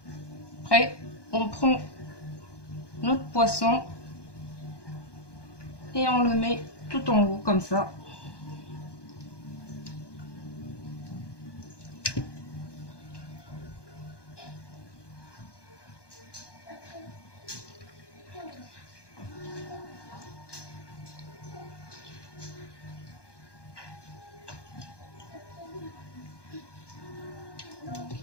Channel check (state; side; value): late; right; 1.2 ms